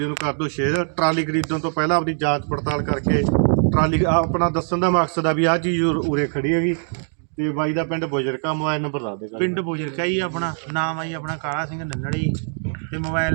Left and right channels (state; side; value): silent; left; 56 dB below the other